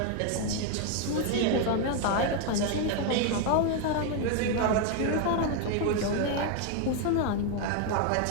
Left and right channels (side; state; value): both; different; correlation 0.01